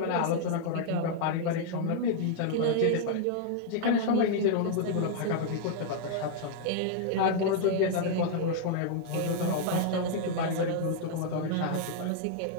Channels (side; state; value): both; different; correlation -0.01